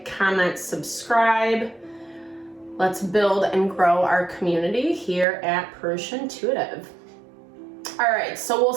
comment, subscribe. Let's build and grow our community here at Purusha Intuitive. All right, so we'll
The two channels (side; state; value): left; drops out; at 5.2 s